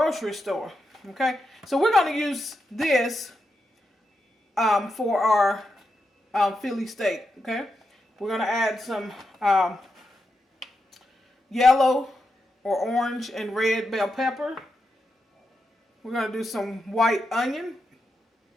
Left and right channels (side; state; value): both; normal; correlation 0.86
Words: store. Okay, so we're going to use this for our Philly steak. Okay, we're going to add some yellow or orange and red bell pepper. We're going to do some white onion.